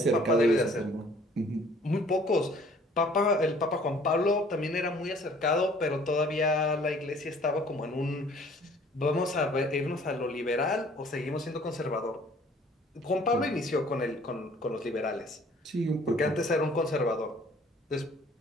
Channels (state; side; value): normal; both; correlation 0.55